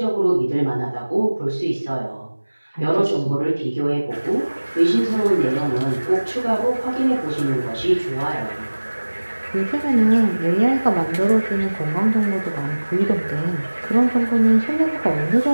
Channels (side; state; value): both; inverted; correlation -1.00